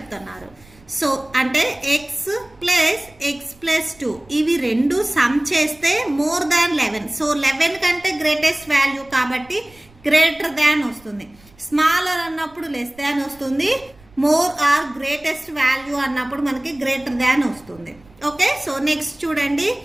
సో అంటే x + x + 2 ఇవి రెండు సమ్ చేస్తే మోర్ దాన్ 11. సో 11 కంటే గ్రేటెస్ట్ వాల్యూ కాబట్టి గ్రేటర్ దాన్ వస్తుంది. స్మాలర్ అన్నప్పుడు లెస్ దాన్ వస్తుంది. మోర్ ఆర్ గ్రేటెస్ట్ వాల్యూ అన్నప్పుడు మనకి గ్రేటర్ దాన్ వస్తుంది. ఓకే, సో నెక్స్ట్ చూడండి,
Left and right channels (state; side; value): noise; right; rumble, 27 dB below the sound